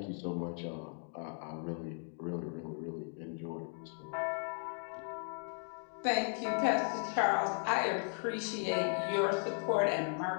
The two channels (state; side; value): silent; right; 53 dB below the other